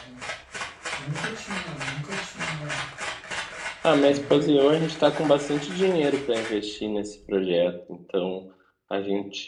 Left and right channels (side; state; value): both; identical; correlation 1.00